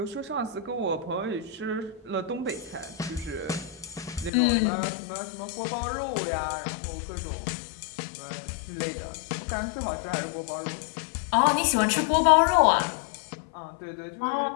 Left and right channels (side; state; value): right; drops out; at 4.3 s